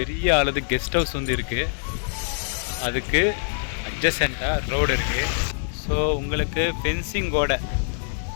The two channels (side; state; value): right; silent; digital silence